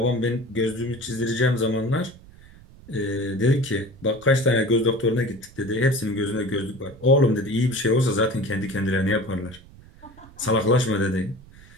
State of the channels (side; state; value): right; noise; rumble, 22 dB below the sound